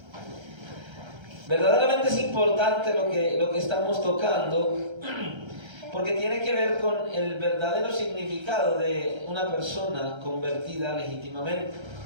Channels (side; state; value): left; late; 1.3 ms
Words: Verdaderamente es importante lo que estamos tocando, porque tiene que ver con el verdadero significado de una persona convertida legítimamente.